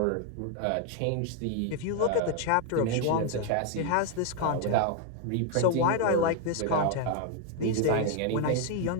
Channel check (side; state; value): both; different; correlation 0.01